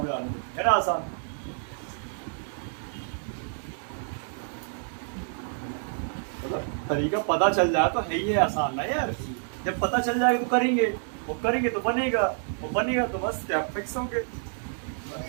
गया है ना, आसान। मतलब तरीका पता चल जाए तो है ही है आसान ना यार। जब पता चल जाएगा तो करेंगे, वो करेंगे तो बनेगा, वो बनेगा तो बस क्या फिक्स होंगे।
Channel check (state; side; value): silent; left; digital silence